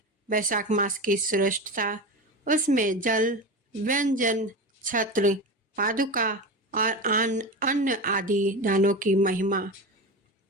वैशाख मास की श्रेष्ठता, उसमें जल, व्यंजन, छत्र, पादुका और अन्न आदि दानों की महिमा।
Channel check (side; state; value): both; normal; correlation 0.24